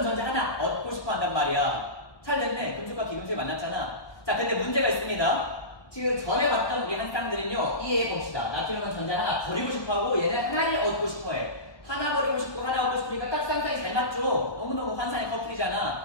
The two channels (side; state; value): right; late; 1.2 ms